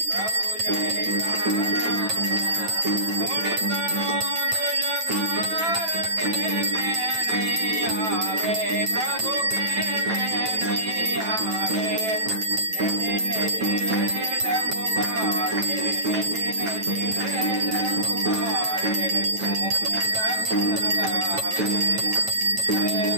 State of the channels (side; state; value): left; late; 9.1 ms